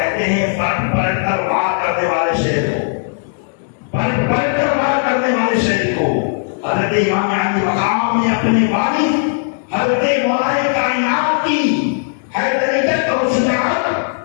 ہیں پلٹ پلٹ کر وار کرنے والے شہر کو، پلٹ پلٹ کر وار کرنے والے شہر کو حضرت امام علی مقام نے اپنے والد حضرت مولا کائنات کی حیدریت اور شجاعت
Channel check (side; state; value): right; silent; digital silence